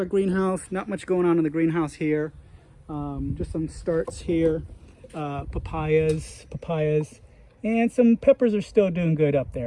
greenhouse. Not much going on in the greenhouse here. Just some starts here. Papayas. And some peppers are still doing good up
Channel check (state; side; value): identical; both; correlation 1.00